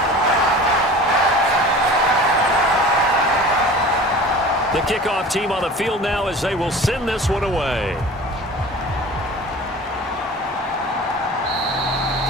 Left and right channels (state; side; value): normal; both; correlation 0.40